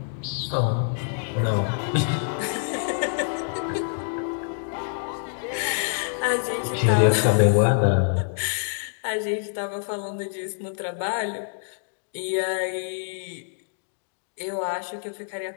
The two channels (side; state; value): right; silent; digital silence